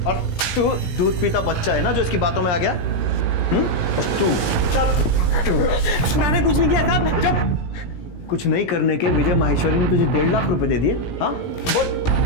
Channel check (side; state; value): right; late; 17 ms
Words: और तू दूध पीता बच्चा है ना जो इसकी बातों में आ गया? और तू मैंने कुछ नहीं किया साहब। जब कुछ नहीं करने के विजय माहेश्वरी ने तुझे 1.5 लाख रुपए दे दिए? हाँ बोल।